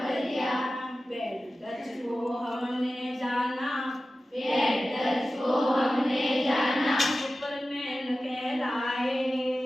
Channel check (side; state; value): both; normal; correlation 0.95